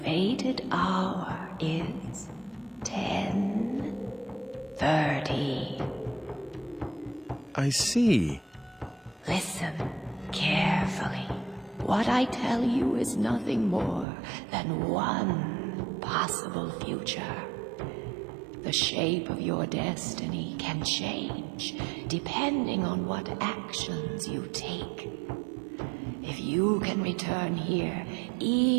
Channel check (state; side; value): drops out; left; at 14.1 s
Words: fated hour is 10:30. I see. Listen carefully. What I tell you is nothing more than one possible future. The shape of your destiny can change depending on what actions you take. If you can return here